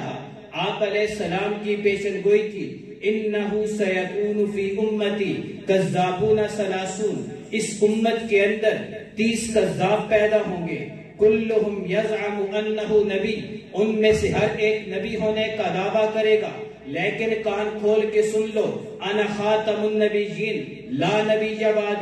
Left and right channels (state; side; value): identical; both; correlation 1.00